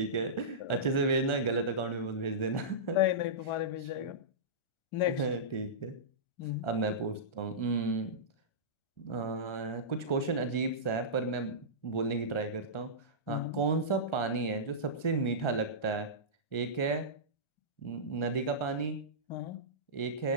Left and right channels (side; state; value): right; late; 1.4 ms